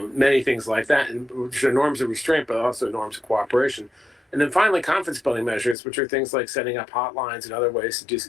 things like that, and which are norms of restraint, but also norms of cooperation. And then finally, confidence building measures, which are things like setting up hotlines and other ways to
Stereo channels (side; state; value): right; drops out; at 5.8 s